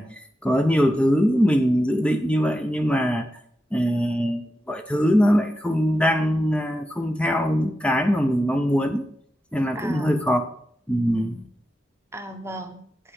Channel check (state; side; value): normal; both; correlation 0.90